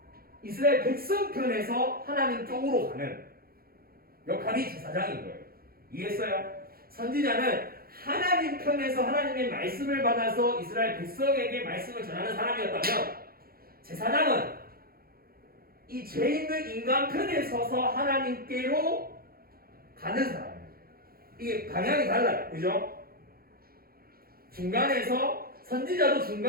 이스라엘 백성 편에서 하나님 쪽으로 가는 역할이 제사장인 거예요. 이해했어요? 선지자는 하나님 편에서 하나님의 말씀을 받아서 이스라엘 백성에게 말씀을 전하는 사람이었다면, 제사장은 이 죄 있는 인간 편에 서서 하나님께로 가는 사람이에요. 이게 방향이 달라요. 그죠? 중간에서 선지자도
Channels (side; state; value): left; late; 0.44 ms